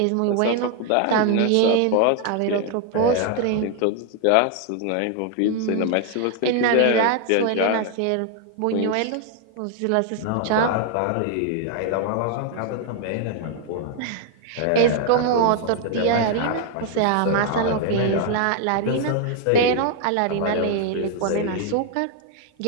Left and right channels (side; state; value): both; different; correlation 0.00